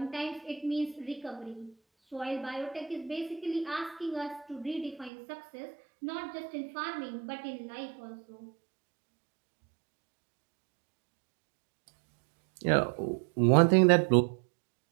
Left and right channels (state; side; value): drops out; left; at 5.1 s